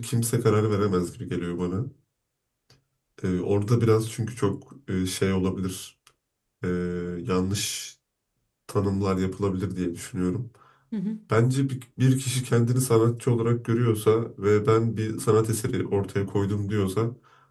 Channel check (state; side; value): identical; both; correlation 1.00